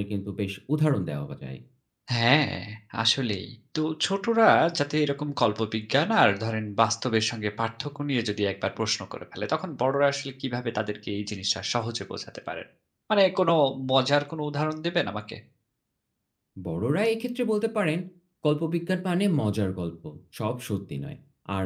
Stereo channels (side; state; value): both; identical; correlation 1.00